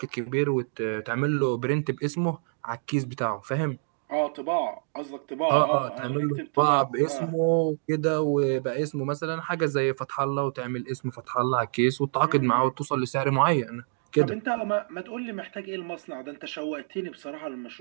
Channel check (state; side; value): silent; left; digital silence